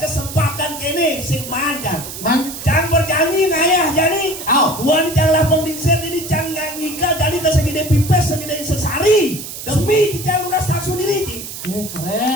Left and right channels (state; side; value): noise; right; hiss, 10 dB below the sound